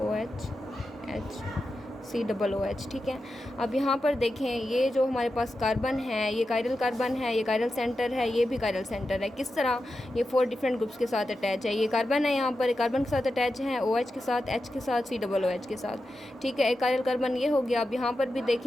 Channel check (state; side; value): normal; both; correlation 0.90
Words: HCOOH। ठीक है, अब यहाँ पर देखें, ये जो हमारे पास कार्बन है, ये कायरल कार्बन है, ये कायरल सेंटर है, ये भी कायरल सेंटर है। किस तरह? ये 4 डिफरेंट ग्रुप्स के साथ अटैच है। ये कार्बन है, यहाँ पर कार्बन के साथ अटैच है, OH के साथ, H के साथ, COOH के साथ। ठीक है, एक कायरल कार्बन ये हो गया। अब यहाँ पर भी